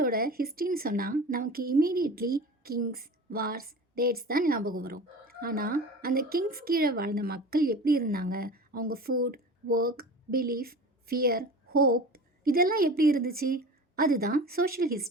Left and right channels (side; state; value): both; normal; correlation 0.35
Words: ஹிஸ்ட்ரின்னு சொன்னால் நமக்கு இமீடியட்லி கிங்ஸ், வார்ஸ், டேட்ஸ் தான் ஞாபகம் வரும். ஆனால் அந்த கிங்ஸ் கீழே வாழ்ந்த மக்கள் எப்படி இருந்தாங்க, அவங்க food, work, belief, fear, hope இதெல்லாம் எப்படி இருந்துச்சு, அதுதான் சோஷியல்